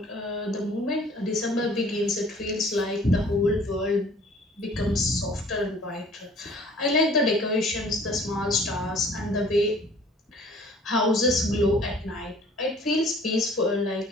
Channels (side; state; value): both; normal; correlation 0.52